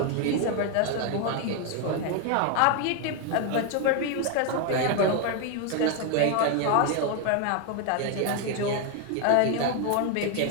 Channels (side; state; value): both; different; correlation 0.01